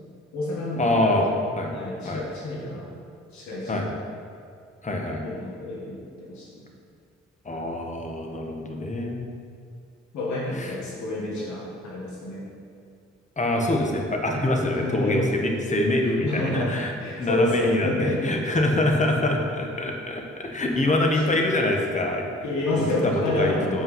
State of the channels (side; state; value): both; normal; correlation 0.50